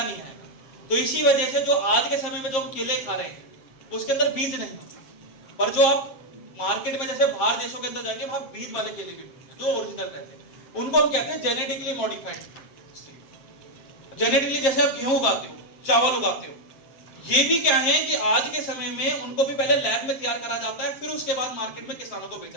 नहीं आएगा। तो इसी वजह से जो आज के समय में जो हम केले खा रहे हैं उसके अंदर बीज नहीं होते, पर जो आप मार्केट में जैसे बाहर देशों के अंदर जाएंगे वहां बीज वाले केले भी मिलते हैं जो ओरिजिनल रहते हैं, उनको हम कहते हैं जेनेटिकली मॉडिफाइड। जेनेटिकली जैसे आप गेहूं उगाते हो, चावल उगाते हो, ये भी क्या है कि आज के समय में उनको भी पहले लैब में तैयार करा जाता है, फिर उसके बाद मार्केट में किसानों को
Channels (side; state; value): right; late; 7.6 ms